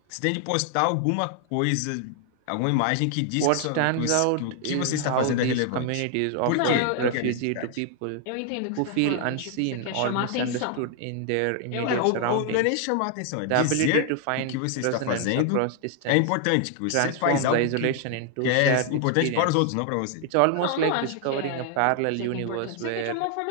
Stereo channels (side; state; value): both; different; correlation 0.00